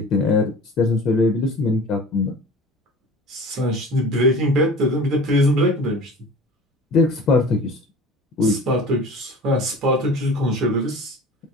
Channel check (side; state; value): both; normal; correlation 0.40